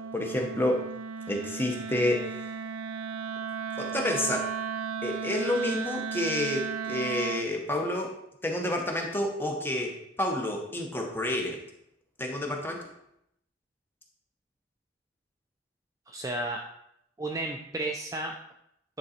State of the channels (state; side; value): normal; both; correlation 0.49